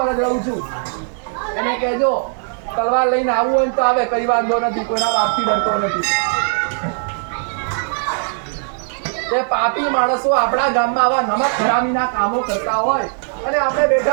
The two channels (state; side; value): silent; left; 56 dB below the other